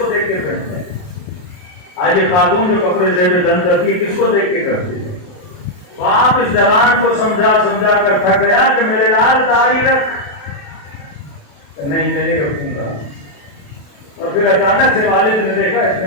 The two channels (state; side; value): late; right; 28 ms